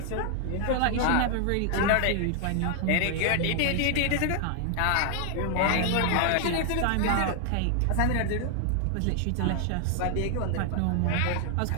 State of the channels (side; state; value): both; different; correlation 0.00